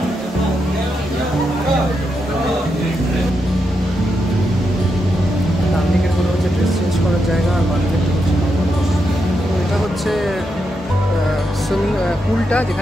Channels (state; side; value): normal; both; correlation 0.84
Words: ডান দিকের কোনো হচ্ছে ড্রেস পুলটা